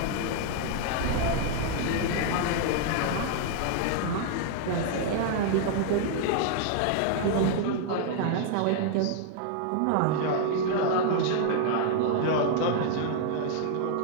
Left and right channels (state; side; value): different; both; correlation -0.01